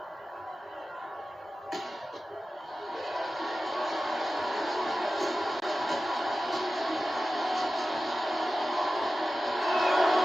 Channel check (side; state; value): both; normal; correlation 0.95